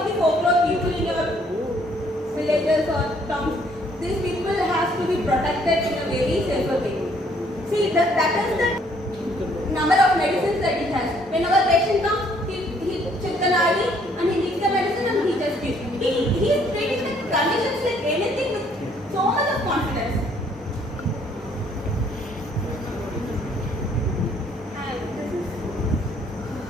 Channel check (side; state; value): both; normal; correlation 0.64